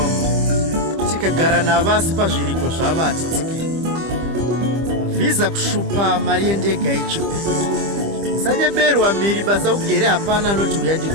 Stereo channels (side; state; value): left; late; 25 ms